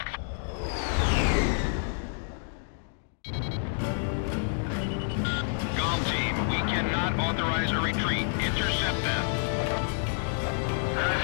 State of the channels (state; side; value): silent; right; digital silence